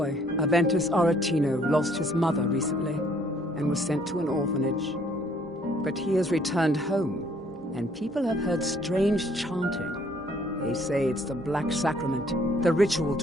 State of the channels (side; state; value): both; normal; correlation 0.62